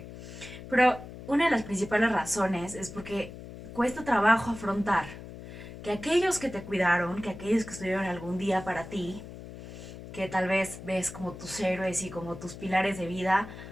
Pero una de las principales razones es porque cuesta trabajo afrontar que aquellos que te cuidaron, que aquellos que estuvieron algún día para ti, que tal vez ves como tus héroes y como tus pilares de vida,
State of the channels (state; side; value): noise; left; hum, 13 dB below the sound